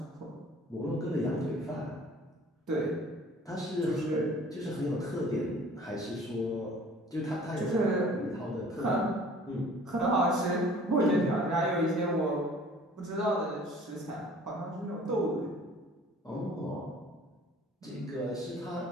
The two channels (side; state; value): both; normal; correlation 0.50